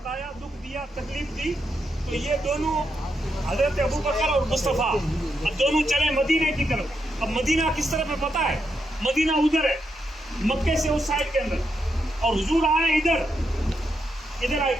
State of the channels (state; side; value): normal; both; correlation 0.82